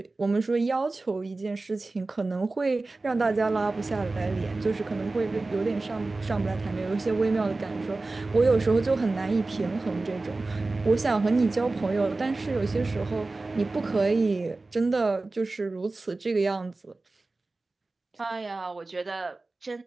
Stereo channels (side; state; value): left; quieter; 3.3 dB